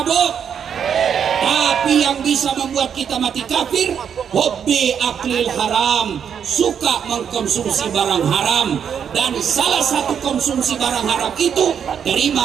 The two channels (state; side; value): quieter; left; 7.8 dB